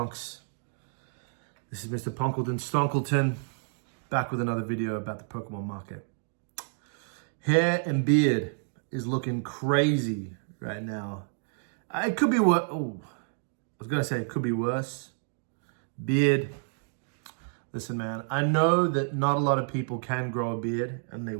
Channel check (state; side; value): silent; left; digital silence